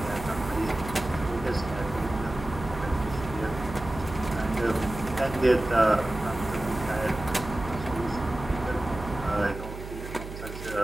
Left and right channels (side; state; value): right; noise; hum, 10 dB below the sound